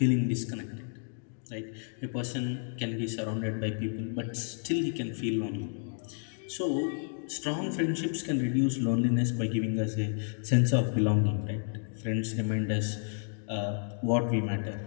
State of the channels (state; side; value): silent; right; 57 dB below the other